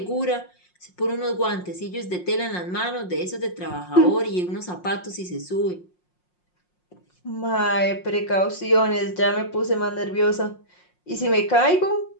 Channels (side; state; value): right; late; 5.6 ms